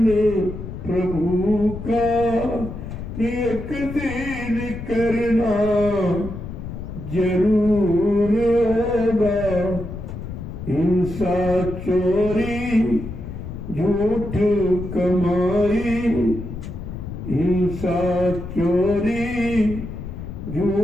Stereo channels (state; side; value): noise; left; rumble, 9 dB below the sound